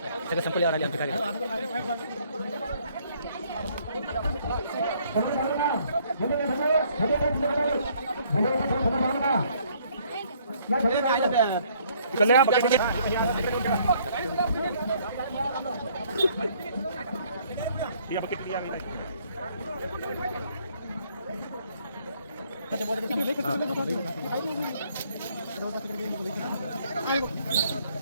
संपल्यावर आले आमचे कार्यकर्ते.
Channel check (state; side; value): inverted; both; correlation -0.63